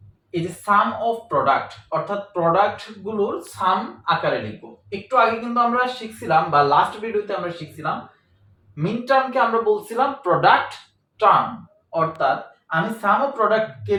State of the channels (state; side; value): identical; both; correlation 1.00